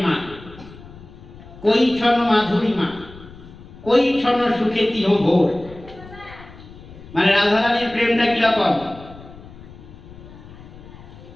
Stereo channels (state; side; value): noise; left; rumble, 18 dB below the sound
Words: কই ছন মাধুরীমা, কই ছন সুখে তিহ ভোর। মানে রাধারানীর প্রেমটা কিরকম,